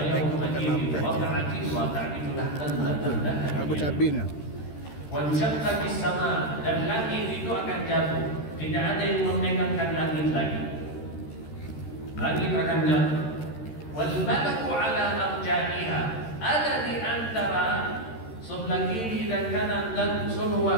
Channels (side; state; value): right; late; 13 ms